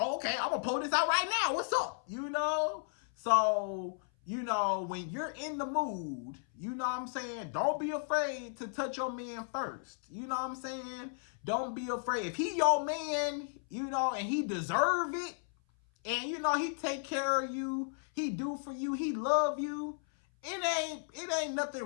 I'm gonna pull this out right now. What's up? You know? So, you know, when you're in the mood, you know what I'm saying? Don't be afraid to touch your man first. You know what I'm saying? Don't be afraid. If he your man, you know, and he deserve it, and you know, he take care of you, he do for you, he love you, it ain't nothing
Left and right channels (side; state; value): right; silent; 55 dB below the other